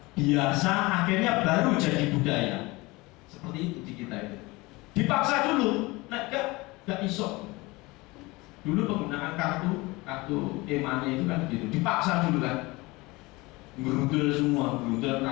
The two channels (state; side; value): quieter; right; 22.8 dB